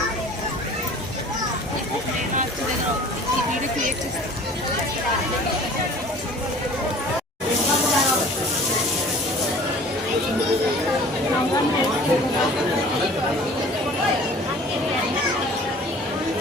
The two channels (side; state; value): both; normal; correlation 0.47